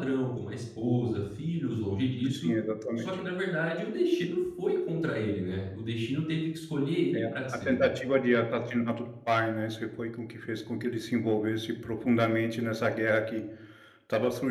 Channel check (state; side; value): identical; both; correlation 1.00